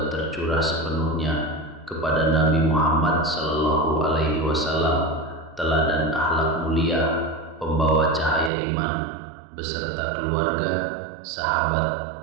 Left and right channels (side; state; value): left; drops out; at 8.5 s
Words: tercurah sepenuhnya kepada Nabi Muhammad Sallallahu Alaihi Wasallam, teladan akhlak mulia, pembawa cahaya iman, beserta keluarga, sahabat,